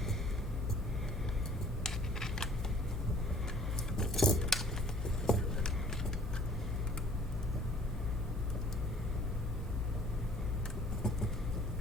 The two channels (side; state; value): both; normal; correlation 0.55